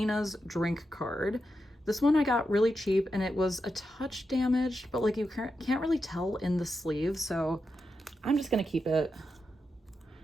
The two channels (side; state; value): both; normal; correlation 0.87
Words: drink card. This one I got really cheap and it was a touch damaged, but like you can't really tell in the sleeve, so I'm just gonna keep it.